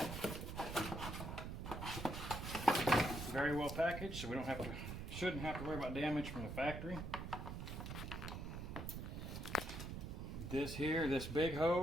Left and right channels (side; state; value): right; noise; rumble, 6 dB below the sound